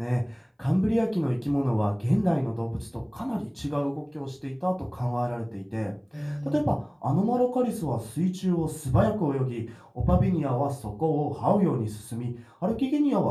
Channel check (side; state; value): both; identical; correlation 1.00